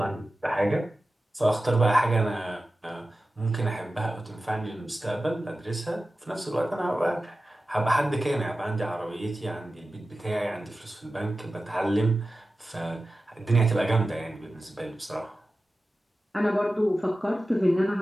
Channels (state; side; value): normal; both; correlation 0.94